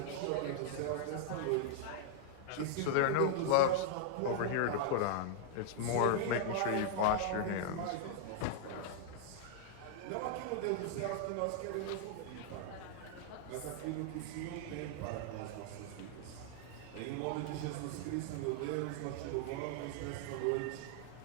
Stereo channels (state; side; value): different; both; correlation -0.01